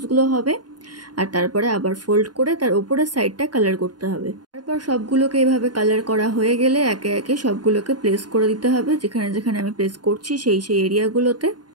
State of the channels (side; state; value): left; late; 0.70 ms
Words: হবে। আর তারপরে আবার ফোল্ড করে তার উপরের সাইডটা কালার করতে হবে। তারপর সবগুলোকে এভাবে কালার করা হয়ে গেলে একে একে সবগুলোকে প্লেস করে দিতে হবে, যেখানে যেখানে আমি প্লেস করছি সেই এরিয়াগুলোতে।